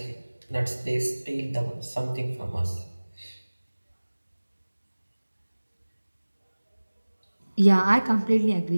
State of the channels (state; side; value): inverted; both; correlation -1.00